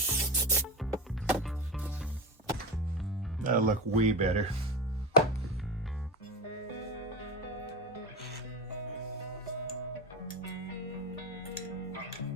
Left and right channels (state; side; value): normal; both; correlation 0.23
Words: That'll look way better.